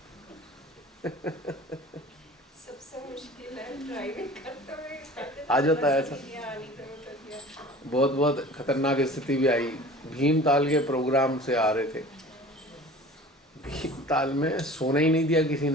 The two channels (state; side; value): normal; both; correlation 0.42